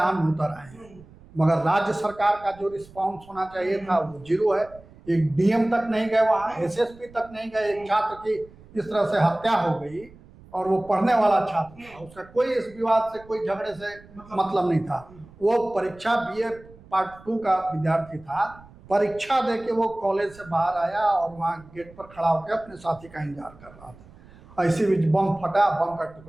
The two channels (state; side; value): noise; right; rumble, 23 dB below the sound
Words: में उतर आए हैं, मगर राज्य सरकार का जो रिस्पॉन्स होना चाहिए था वो जीरो है। एक डीएम तक नहीं गए वहाँ, एसएसपी तक नहीं गए। एक छात्र की इस तरह से हत्या हो गई और वो पढ़ने वाला छात्र था, उसका कोई इस विवाद से, कोई झगड़े से मतलब नहीं था। वो परीक्षा बीए पार्ट 2 का विद्यार्थी था, परीक्षा दे के वो कॉलेज से बाहर आया और वहाँ गेट पर खड़ा होकर अपने साथी का इंतजार कर रहा था। ऐसी भी बम फटा, बम का